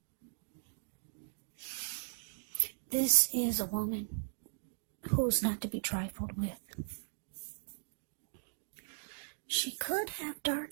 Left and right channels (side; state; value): left; silent; digital silence